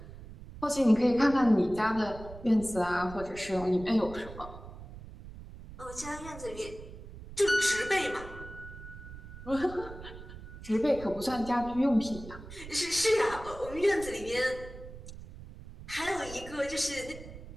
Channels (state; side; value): noise; right; rumble, 14 dB below the sound